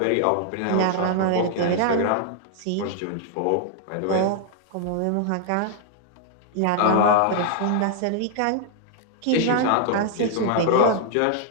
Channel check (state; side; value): different; both; correlation 0.00